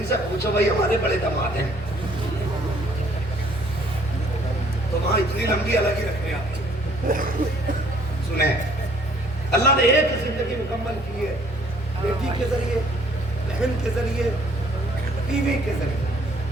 سے پوچھو بھائی ہمارے بڑے دماد ہیں تو وہاں اتنی لمبی الگ ہی رکھ رہے آپ. سنیں اللہ نے ایک زندگی مکمل کی ہے بیٹی کے ذریعے, بہن کے ذریعے, بیوی کے ذریعے.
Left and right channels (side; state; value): both; normal; correlation 0.61